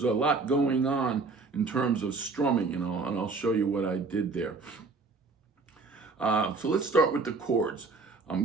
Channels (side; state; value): left; quieter; 4.0 dB